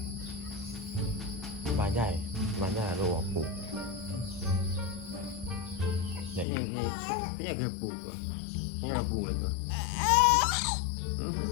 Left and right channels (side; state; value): right; drops out; at 6.5 s